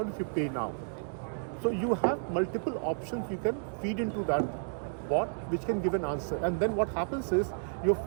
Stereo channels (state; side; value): silent; left; digital silence